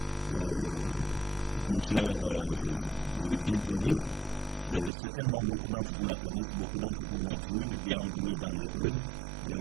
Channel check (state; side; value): drops out; left; at 4.9 s